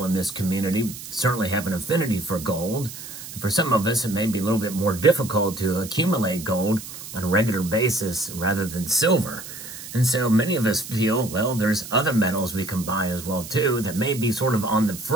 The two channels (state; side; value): noise; right; hiss, 12 dB below the sound